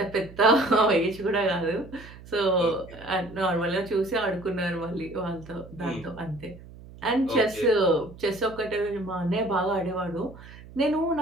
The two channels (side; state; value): right; noise; hum, 18 dB below the sound